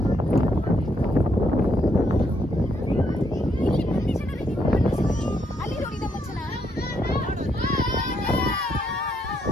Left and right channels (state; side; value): normal; both; correlation 0.75